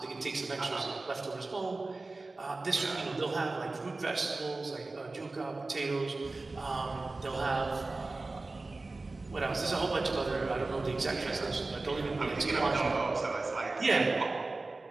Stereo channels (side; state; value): left; quieter; 3.3 dB